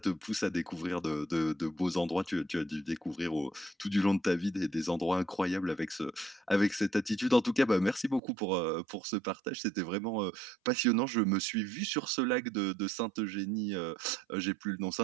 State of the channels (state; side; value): drops out; left; at 8.2 s